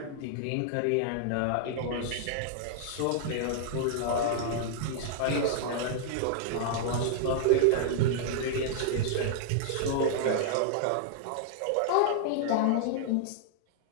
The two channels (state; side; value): different; both; correlation -0.01